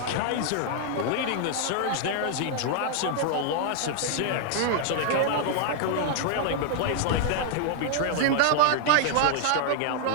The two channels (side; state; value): both; different; correlation 0.00